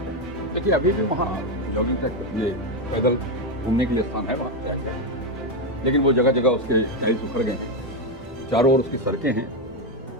देखिए, अभी भी वहाँ जॉगिंग ट्रैक के लिए, पैदल घूमने के लिए स्थान है वहाँ, क्या क्या, लेकिन वो जगह जगह उसके टाइल्स उखड़ गए हैं। चारों ओर उसकी सड़कें हैं।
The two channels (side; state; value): both; normal; correlation 0.07